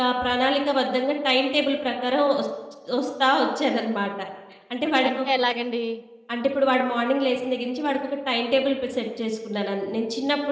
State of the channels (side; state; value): both; identical; correlation 1.00